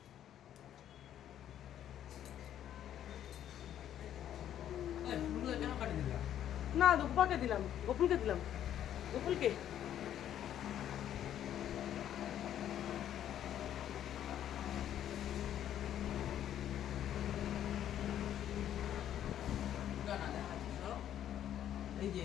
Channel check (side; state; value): right; quieter; 10.8 dB